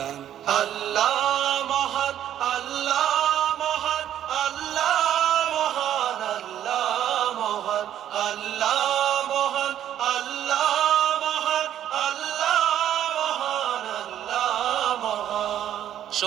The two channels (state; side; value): quieter; left; 11.0 dB